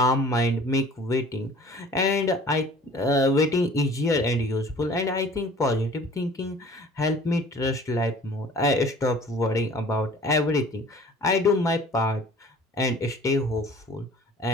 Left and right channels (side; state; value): both; normal; correlation 0.49